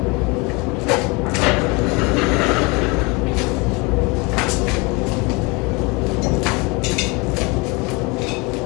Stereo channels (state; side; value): quieter; right; 27.7 dB